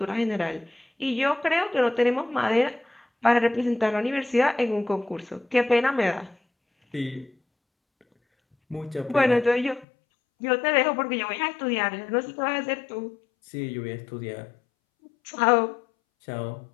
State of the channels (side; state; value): right; drops out; at 9.9 s